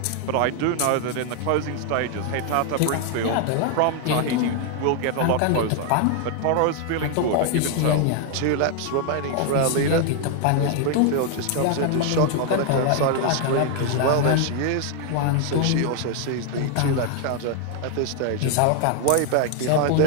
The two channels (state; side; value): different; both; correlation 0.00